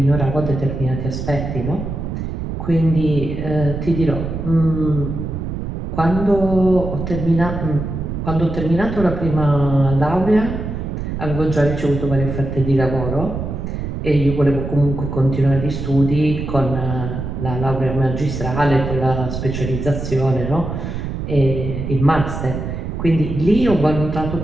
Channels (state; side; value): noise; right; rumble, 5 dB below the sound